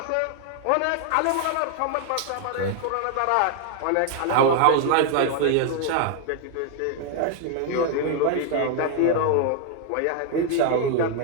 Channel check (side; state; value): both; different; correlation 0.00